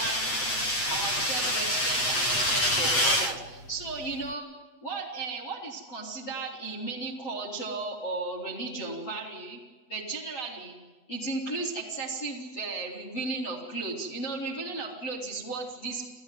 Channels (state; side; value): late; right; 8.2 ms